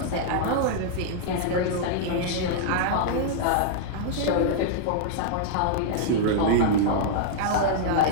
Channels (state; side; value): different; both; correlation -0.01